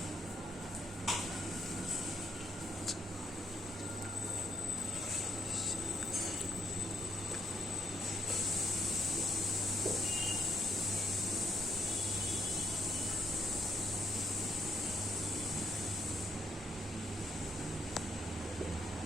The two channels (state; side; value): normal; both; correlation 0.73